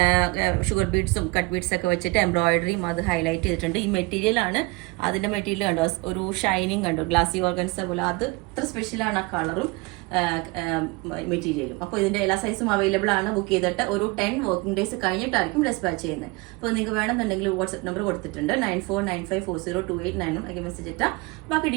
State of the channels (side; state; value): left; quieter; 24.7 dB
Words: ഷുഗർ ബീഡ്സും കട്ട് ബീഡ്സ് ഒക്കെ വെച്ചിട്ട് എംബ്രോയിഡറിയും അത് ഹൈലൈറ്റ് ചെയ്തിട്ടുണ്ട്. ഈ മെറ്റീരിയൽ ആണ്. അതിന്റെ മെറ്റീരിയൽ കണ്ടോ, ഒരു ഷൈനിങ് കണ്ടോ, ഗ്ലാസി ഓർഗൻസ പോലെ. അത് ഇത്ര സ്പെഷ്യലാണ് ആ കളറും മെറ്റീരിയലും. അപ്പോൾ ഇതിന്റെ എല്ലാ സൈസും അവൈലബിൾ ആണ്. ബുക്ക് ചെയ്തിട്ട് ഒരു 10 വർക്കിംഗ് ഡേയ്സ് കഴിഞ്ഞിട്ടായിരിക്കും ഡെസ്പാച്ച് ചെയ്യുന്നത്. അപ്പോൾ നിങ്ങൾക്ക് വേണമെന്നുണ്ടെങ്കിൽ വാട്സ്ആപ്പ് നമ്പർ കൊടുത്തിട്ടുണ്ട്. 9495402891. മെസ്സേജ് ഇട്ടാൽ ബാക്കി